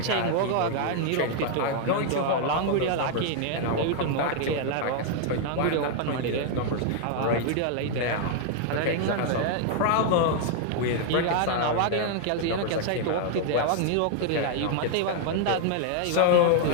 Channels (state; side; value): different; both; correlation 0.00